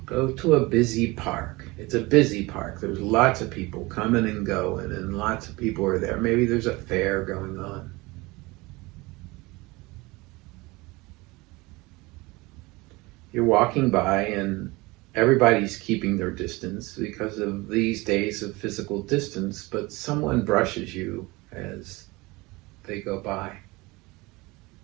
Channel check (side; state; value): left; quieter; 23.0 dB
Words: go to a busy park. It's a busy park. There's lots of people coming and going, and lots of people are there. Maybe there's a fair going on. You're walking by and everybody's keeping their distance because of these days of physical distance, but someone brushes you as they go by.